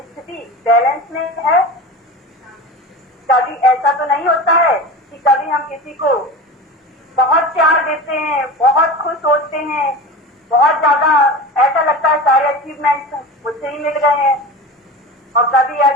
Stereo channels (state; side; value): normal; both; correlation 0.30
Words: स्थिति बैलेंस में है? कभी ऐसा तो नहीं होता है कि कभी हम किसी को बहुत प्यार देते हैं, बहुत खुश होते हैं, बहुत ज्यादा ऐसा लगता है सारे अचीवमेंट्स मुझसे ही मिल गए हैं। और कभी